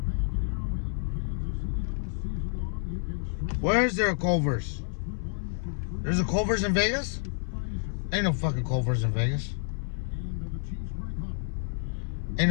Where is there a Culver's? There's a Culver's in Vegas? Ain't no fucking Culver's in Vegas.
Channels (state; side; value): silent; right; 58 dB below the other